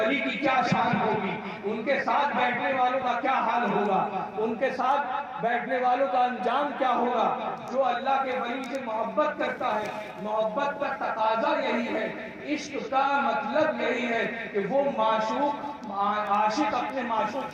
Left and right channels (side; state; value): both; identical; correlation 1.00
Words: کی کیا شان ہوگی، ان کے ساتھ بیٹھنے والوں کا کیا حال ہوگا، ان کے ساتھ بیٹھنے والوں کا انجام کیا ہوگا۔ جو اللہ کے ولی سے محبت کرتا ہے، محبت کا تقاضا یہی ہے، عشق کا مطلب یہی ہے کہ وہ عاشق اپنے معشوق